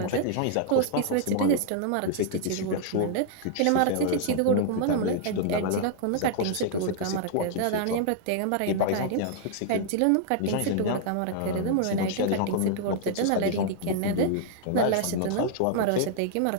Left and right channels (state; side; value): different; both; correlation -0.01